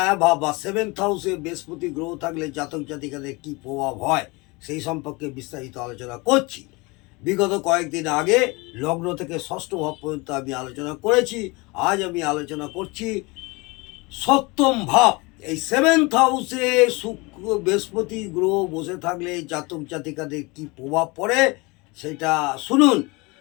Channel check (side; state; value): right; quieter; 25.9 dB